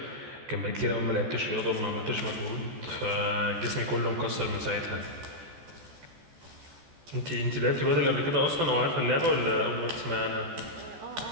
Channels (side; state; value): left; late; 14 ms